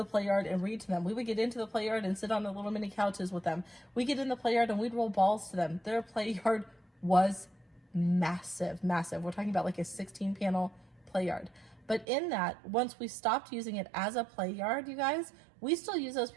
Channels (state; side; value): drops out; left; at 12.1 s